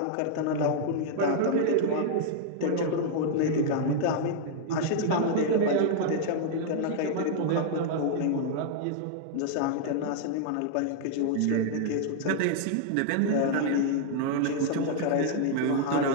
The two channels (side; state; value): both; different; correlation -0.01